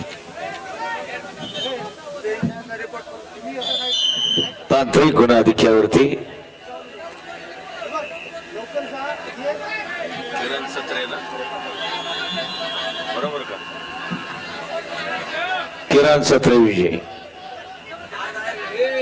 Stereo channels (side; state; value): both; identical; correlation 1.00